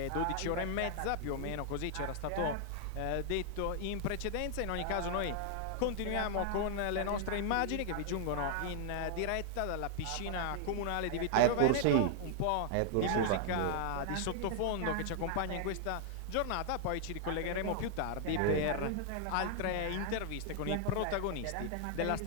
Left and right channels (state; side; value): different; both; correlation 0.00